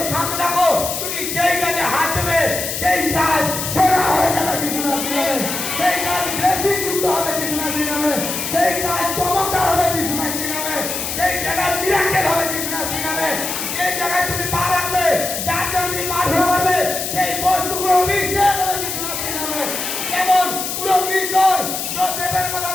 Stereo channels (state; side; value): noise; left; hiss, 4 dB below the sound